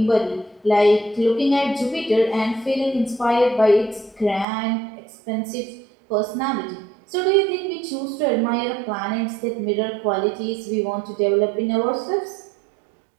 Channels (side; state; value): left; drops out; at 4.5 s